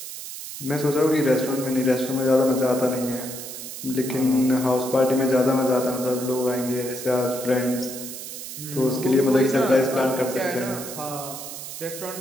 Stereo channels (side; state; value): right; noise; hiss, 10 dB below the sound